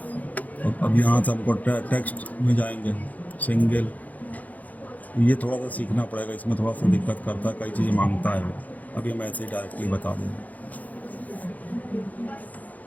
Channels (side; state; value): right; late; 0.078 ms